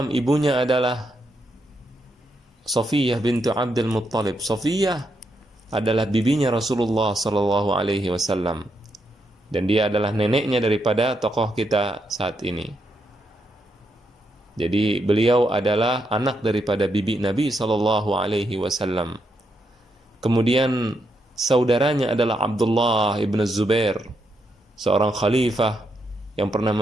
ibunya adalah Safiyah bintu Abdul Muttalib. Safiyah adalah bibinya Rasulullah sallallahu alaihi wasallam. Dan dia adalah neneknya daripada tokoh kita saat ini. Jadi beliau adalah anak daripada bibi Nabi sallallahu alaihi wasallam. Kemudian saudaranya adalah Abdullah ibn Zubair, seorang khalifah yang pernah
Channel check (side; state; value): both; normal; correlation 0.81